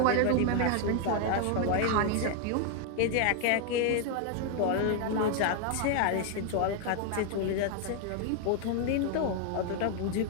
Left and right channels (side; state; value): both; different; correlation 0.00